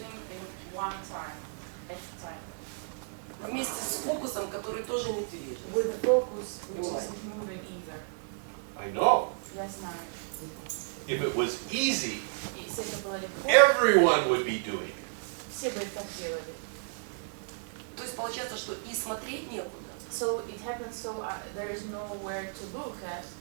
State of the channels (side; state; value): left; silent; digital silence